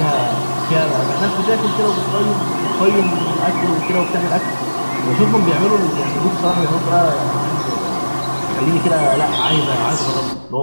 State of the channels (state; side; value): inverted; both; correlation -1.00